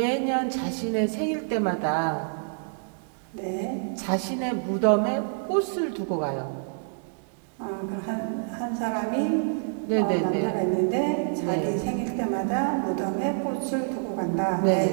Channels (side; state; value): left; silent; digital silence